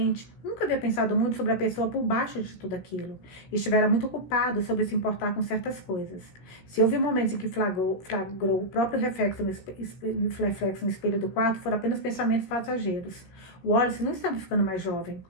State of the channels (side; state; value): right; late; 16 ms